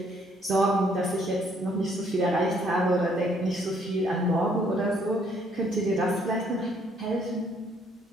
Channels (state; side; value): normal; both; correlation 0.66